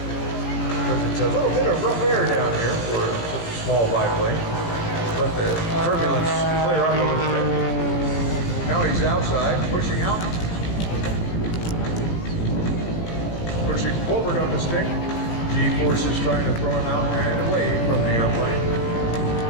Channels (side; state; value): right; late; 17 ms